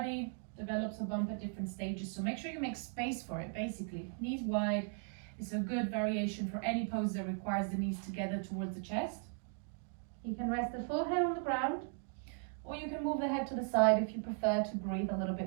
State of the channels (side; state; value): left; silent; 53 dB below the other